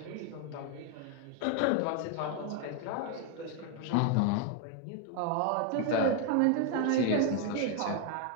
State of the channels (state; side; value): different; both; correlation 0.01